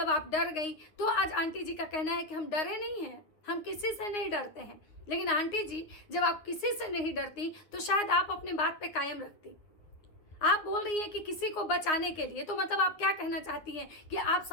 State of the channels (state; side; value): late; right; 9.7 ms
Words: आप डर गई। तो आज आंटी जी का कहना है कि हम डरे नहीं हैं, हम किसी से नहीं डरते हैं। लेकिन आंटी जी, जब आप किसी से नहीं डरती तो शायद आप अपने बात पे कायम रखती। आप बोल रही हैं कि किसी को बचाने के लिए, तो मतलब आप क्या कहना चाहती हैं कि आप